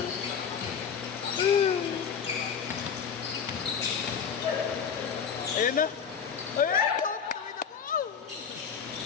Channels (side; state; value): right; quieter; 6.9 dB